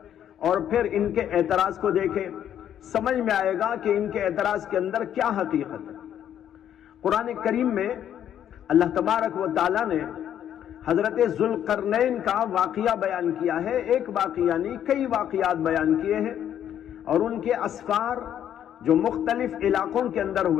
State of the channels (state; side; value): quieter; right; 10.1 dB